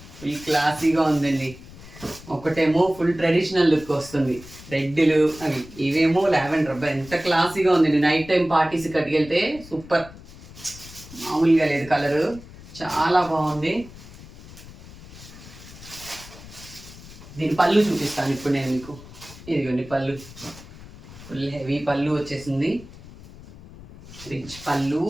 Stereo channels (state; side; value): noise; left; rumble, 18 dB below the sound